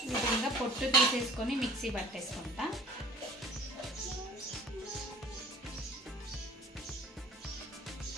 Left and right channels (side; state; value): both; normal; correlation 0.46